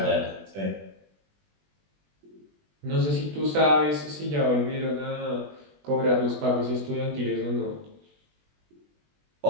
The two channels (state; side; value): late; left; 20 ms